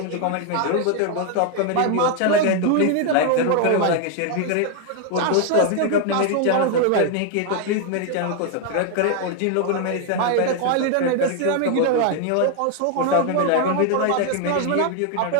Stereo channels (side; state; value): both; different; correlation 0.00